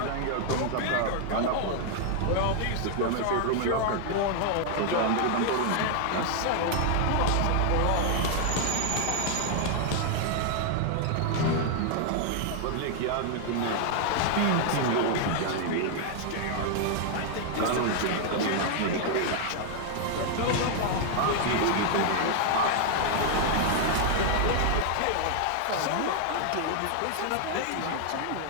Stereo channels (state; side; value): different; both; correlation 0.00